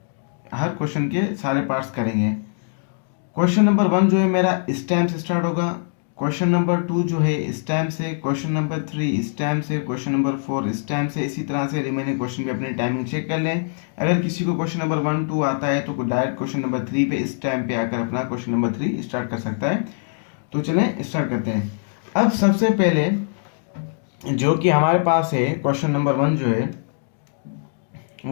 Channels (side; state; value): right; silent; digital silence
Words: हर क्वेश्चन के सारे पार्ट्स करेंगे। क्वेश्चन नंबर 1 जो है मेरा इस टाइम से स्टार्ट होगा, क्वेश्चन नंबर 2 जो है इस टाइम से, क्वेश्चन नंबर 3 इस टाइम से, क्वेश्चन नंबर 4 इस टाइम से। इसी तरह से रिमेनिंग क्वेश्चन भी अपनी टाइमिंग चेक कर लें। अगर किसी को क्वेश्चन नंबर 1, 2 आता है तो डायरेक्ट क्वेश्चन नंबर 3 पे इस टाइम पे आकर अपना क्वेश्चन नंबर 3 स्टार्ट कर सकता है। तो चलें स्टार्ट करते हैं। अब सबसे पहले जो कि हमारे पास है क्वेश्चन नंबर 1 जो है